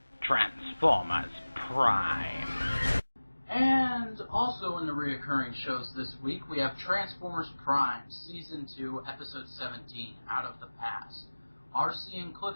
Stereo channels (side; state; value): both; inverted; correlation -1.00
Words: Transformers Prime. And also in the reoccurring shows this week, we have Transformers Prime, Season 2, Episode 17, Out of the Past. RC and